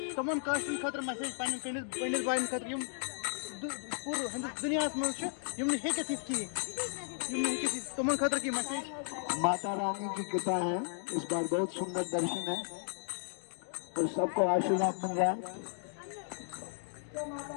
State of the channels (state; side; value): silent; right; digital silence